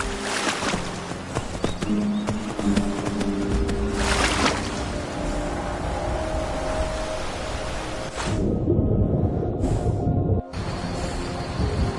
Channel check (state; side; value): identical; both; correlation 1.00